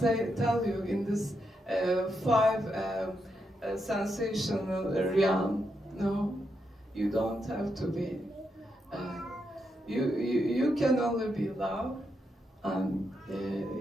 tell you in this 5 sensational realm. No, you don't have to be. You can only be love, and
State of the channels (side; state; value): both; normal; correlation 0.82